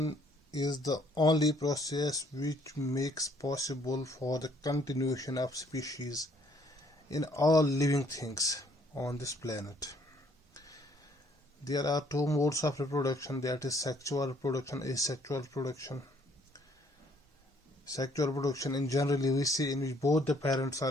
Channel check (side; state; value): both; normal; correlation 0.64